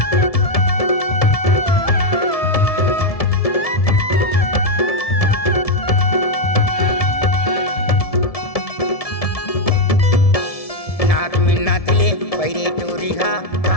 नाक में नाचले पैरे टोरी घा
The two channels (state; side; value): late; right; 1.7 ms